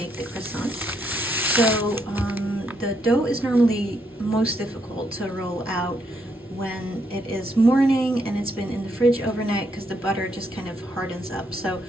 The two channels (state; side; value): normal; both; correlation 0.76